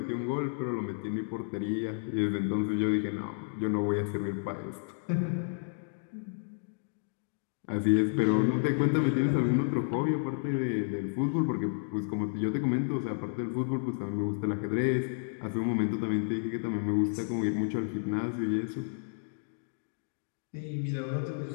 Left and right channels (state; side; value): silent; right; digital silence